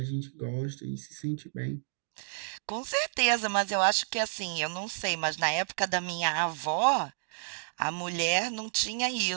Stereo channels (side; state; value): left; silent; digital silence